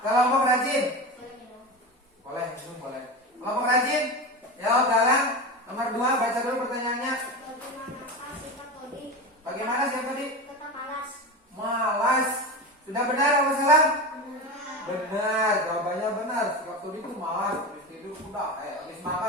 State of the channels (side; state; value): both; normal; correlation 0.24